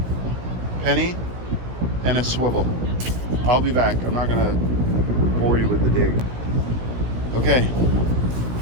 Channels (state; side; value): late; left; 17 ms